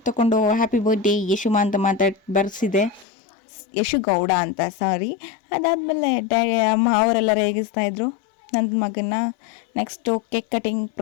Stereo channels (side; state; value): right; drops out; at 3.1 s